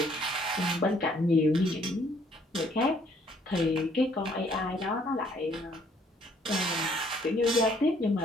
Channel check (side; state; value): both; normal; correlation 0.63